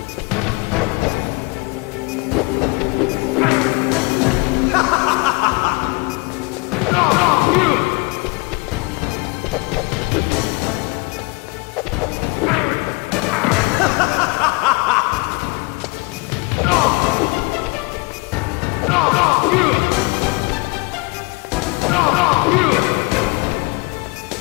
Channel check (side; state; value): right; quieter; 27.4 dB